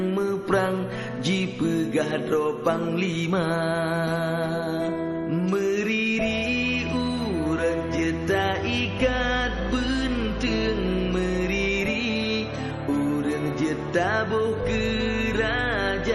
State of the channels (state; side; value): identical; both; correlation 1.00